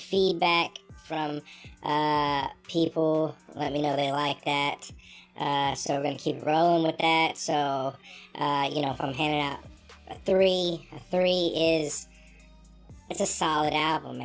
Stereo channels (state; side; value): identical; both; correlation 1.00